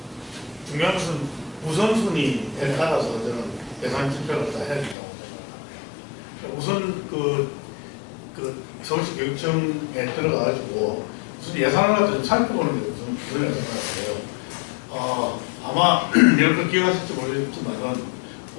중요한 것은 우선순위에 따라서 저는 예산 집행을 다 해야 된다고 생각합니다. 우선 서울시 교육청에 들어가가지고 무슨 예산을 갖다 좀 살펴보는 게 우선 그런 생각을 해요. 아마 이렇게 기억하실지 모르겠지만은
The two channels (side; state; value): right; drops out; at 5.0 s